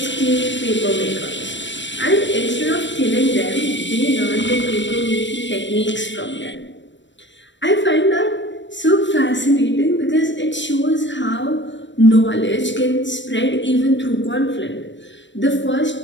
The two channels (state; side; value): late; right; 0.53 ms